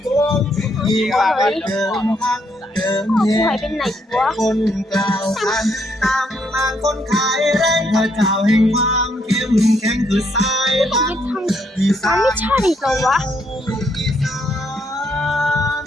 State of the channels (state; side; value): normal; both; correlation 0.73